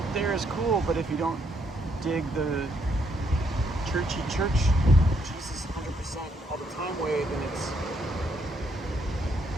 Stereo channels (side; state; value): both; normal; correlation 0.72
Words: there is cool, but if you don't dig the churchy church, Jesus 100% all the time way, then